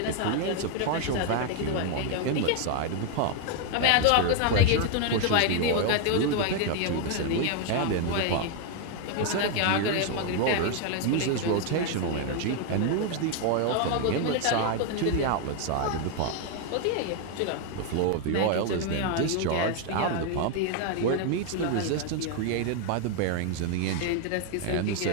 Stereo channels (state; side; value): different; both; correlation 0.01